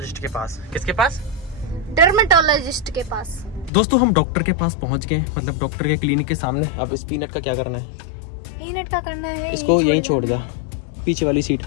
के पास। किसके पास? डर्मेटोलॉजिस्ट के पास। दोस्तों हम डॉक्टर के पास पहुंच गए, मतलब डॉक्टर के क्लिनिक के सामने। अब इस पीनट का क्या करना है? पीनट का करना है इसको यहीं छोड़ जा, पीछे वाली सीट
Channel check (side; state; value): right; drops out; at 3.7 s